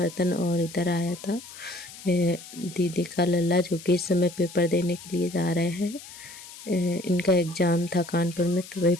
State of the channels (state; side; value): noise; left; hiss, 16 dB below the sound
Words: और इधर आया था दीदी का लल्ला जो कि इस समय पेपर देने के लिए जा रहे हैं। इनका एग्ज़ाम था कानपुर में, तो वही